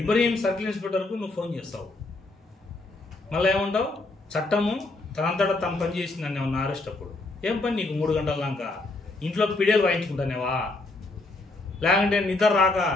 ఇబ్రహీం సర్కిల్ ఇన్స్పెక్టర్కు నువ్వు ఫోన్ చేస్తావు. మళ్ళీ ఏమంటావు, చట్టము తనంతటా తను పని చేసిందని ఏమన్నా అరెస్ట్ అప్పుడు. ఏం పని నీకు 3 గంటల దాకా ఇంట్లో పిడియలు వాయించుకుంటానేవా, లేకుంటే నిద్ర రాక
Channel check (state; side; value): quieter; right; 3.1 dB